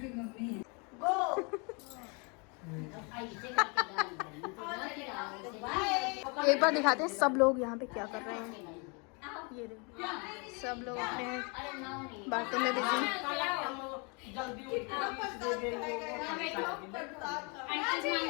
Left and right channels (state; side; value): quieter; right; 32.6 dB